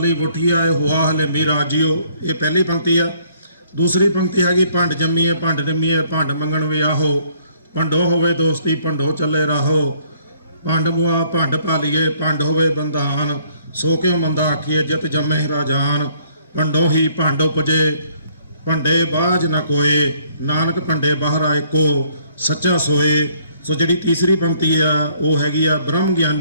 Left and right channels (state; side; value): inverted; both; correlation -0.63